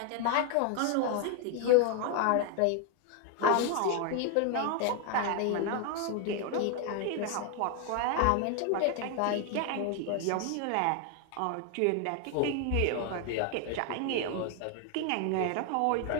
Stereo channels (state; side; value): different; both; correlation 0.01